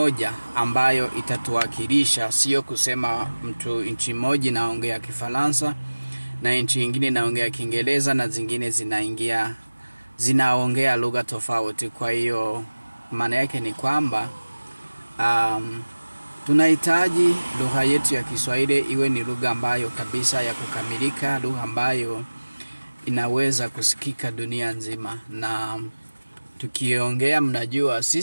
ambayo itatuwakilisha, sio kusema mtu nchi moja naongea Kifaransa na nchi nyingine naongea Kiingereza na zingine zinaongea lugha tofauti. Kwa hiyo maana yake ni kwamba tunahitaji lugha yetu ya Kiswahili iwe ni lugha ambayo kabisa ya kukamilika, lugha ambayo inaweza kusikika dunia nzima. Na tukiongea, mnajua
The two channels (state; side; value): inverted; both; correlation -1.00